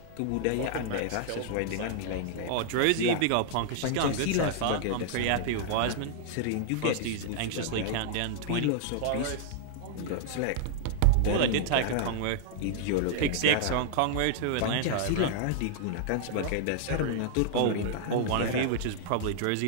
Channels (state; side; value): different; both; correlation -0.01